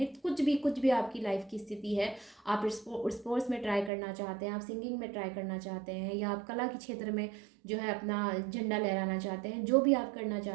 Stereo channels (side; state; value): left; drops out; at 3.9 s